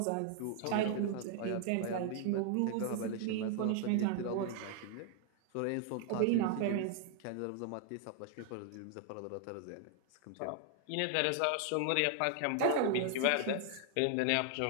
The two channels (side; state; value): both; different; correlation 0.00